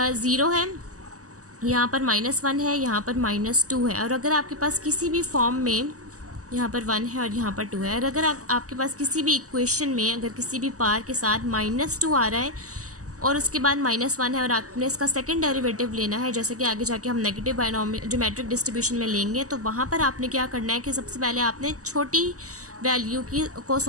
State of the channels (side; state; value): left; late; 0.66 ms